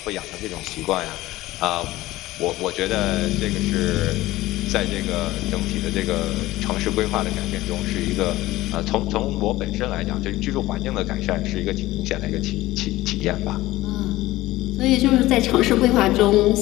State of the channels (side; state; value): right; quieter; 17.3 dB